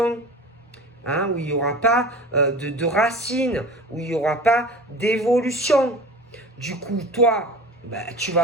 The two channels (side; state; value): both; normal; correlation 0.37